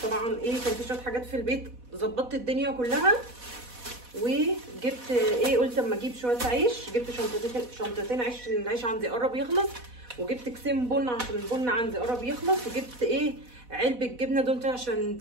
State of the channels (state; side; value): late; left; 4.1 ms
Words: طبعا ايه، كان في شويه حاجات في البيت، ظبطت الدنيا كلها. وجبت ايه، قلت اما اجيب شويه عيش. جبت شنطتين عيش عشان العيش عندي قرب يخلص. وجبت كيسين بن عشان البن عندي قرب يخلص. وجبت ايه، علبه جبنه دومتي عشان